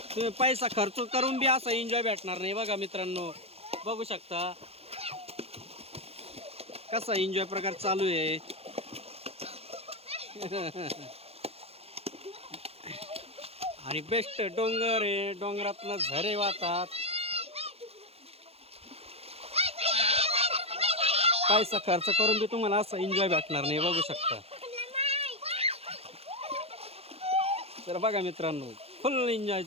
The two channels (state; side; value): late; left; 0.29 ms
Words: तुम्ही पैसा खर्च करून बी असा एन्जॉय भेटणार नाही. बघा मित्रांनो बघू शकता कसा एन्जॉय प्रकार चालू आहे. आणि बेस्ट डोंगर आहे, डोंगरातनं झरे वाहतात. पैसा खर्च करून बी तुम्हाला असं एन्जॉय भेटणार नाही, बघू शकता. तर बघा मित्रांनो, फुल एन्जॉय